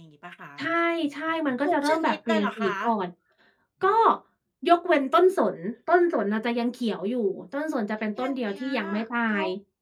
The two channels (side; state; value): both; identical; correlation 1.00